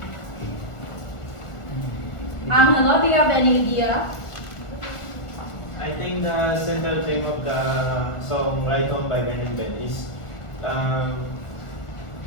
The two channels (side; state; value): right; late; 1.4 ms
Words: Angelo, do you have any idea? I think the central theme of the song Ride Home by Ben and Ben is